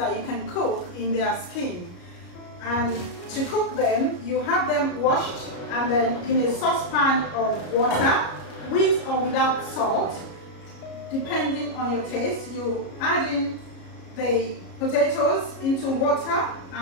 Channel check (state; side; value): late; right; 33 ms